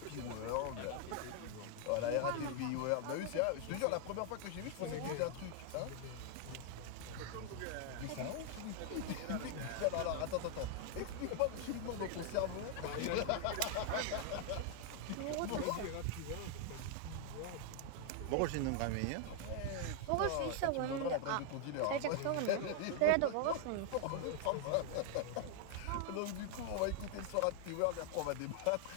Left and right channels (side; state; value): both; different; correlation 0.00